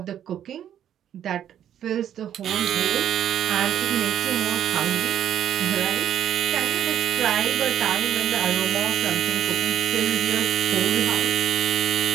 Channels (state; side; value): quieter; left; 10.3 dB